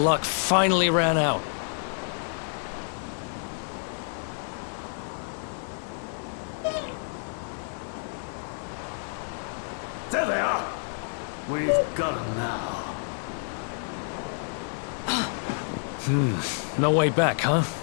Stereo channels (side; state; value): right; silent; 59 dB below the other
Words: finally ran out. There they are. We've got them now. No way back, huh?